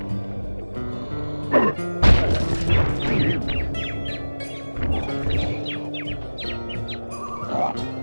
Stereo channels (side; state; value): both; inverted; correlation -1.00